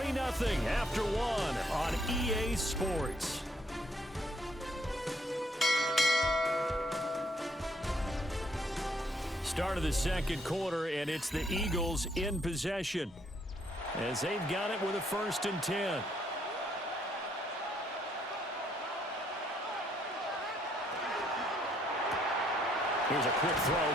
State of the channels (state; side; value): normal; both; correlation 0.68